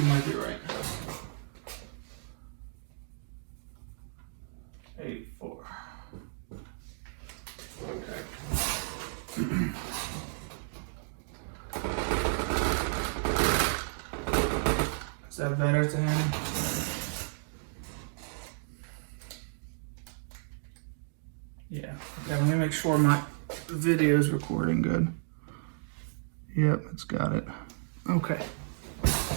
might be right. 8.4. Okay. Is that better to him? Yeah. Okay, let me make sure my video is recording good. Yep, it's got it. Okay.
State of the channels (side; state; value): left; silent; digital silence